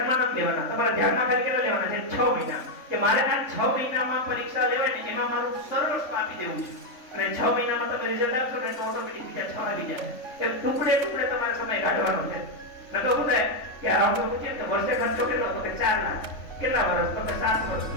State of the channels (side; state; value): right; late; 3.5 ms